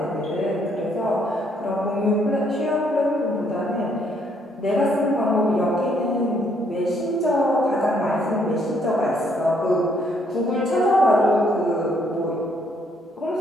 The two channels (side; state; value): both; normal; correlation 0.69